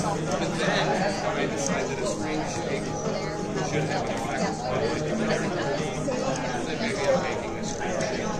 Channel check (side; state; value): both; identical; correlation 1.00